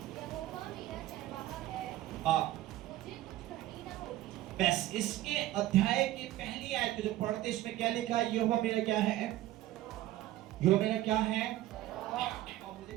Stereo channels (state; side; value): quieter; left; 14.9 dB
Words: बस इसके अध्याय की पहली आयत जो पढ़ते इसमें क्या लिखा है? यहोवा मेरा क्या है? यहोवा मेरा क्या है? और मुझे